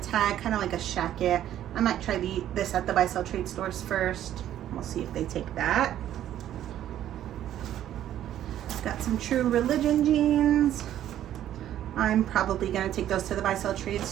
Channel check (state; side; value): quieter; left; 11.7 dB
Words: Tag, kind of like a shacket. I might try this at the buy sell trade stores first. We'll see if they take that. Got some True Religion jeans. I'm probably gonna take those to the buy sell trade